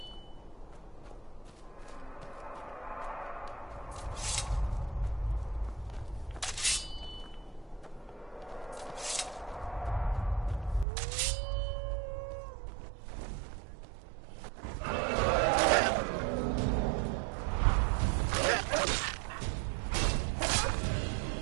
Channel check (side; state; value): left; drops out; at 10.9 s